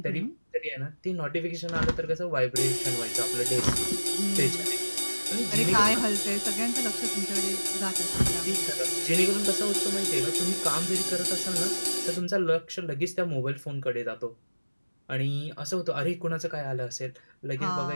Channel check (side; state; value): both; inverted; correlation -1.00